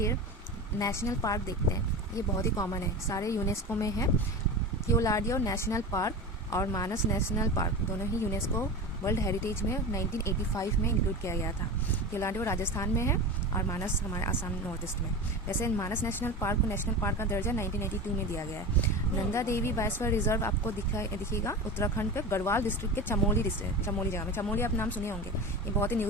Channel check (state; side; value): normal; both; correlation 0.28